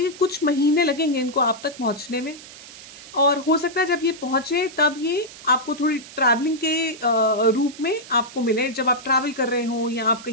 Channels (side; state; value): right; noise; hiss, 17 dB below the sound